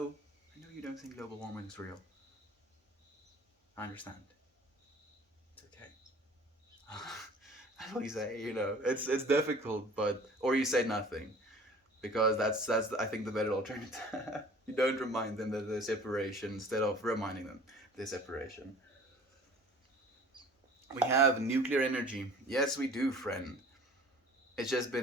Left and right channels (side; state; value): both; normal; correlation 0.47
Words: you don't think global warming is real. I understand. It's okay. That's what you say, it's difficult, but or you say nothing, because that's I think the better alternative. You don't remind them that there's separation instead of reminding them there's separation. We have nuclear energy. Yes, we do, friend. It's just